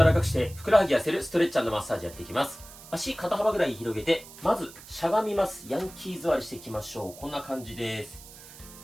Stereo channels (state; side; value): noise; right; hiss, 18 dB below the sound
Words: らかくしてふくらはぎ痩せるストレッチ&マッサージやっていきます。足肩幅ぐらい広げて、まずしゃがみます。ヤンキー座りしていきましょう。こんな感じです。